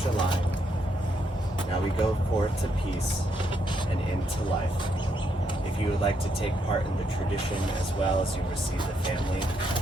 Now we go forth to peace and into life. If you would like to take part in the tradition as well as you receive the family,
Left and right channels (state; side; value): normal; both; correlation 0.76